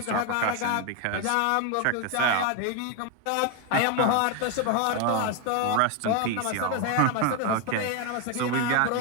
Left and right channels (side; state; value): both; different; correlation 0.01